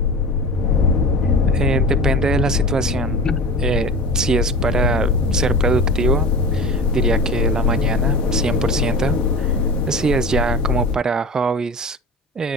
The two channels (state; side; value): normal; both; correlation 0.33